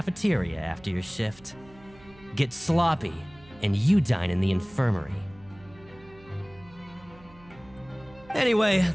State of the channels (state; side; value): noise; right; hum, 24 dB below the sound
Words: after your shift. Get sloppy, and you dine in the infirmary. Anyway,